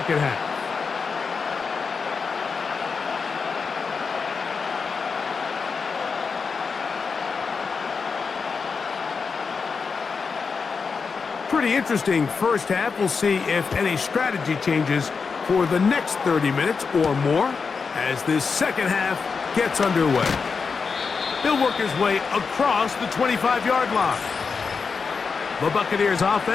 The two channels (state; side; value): quieter; right; 5.2 dB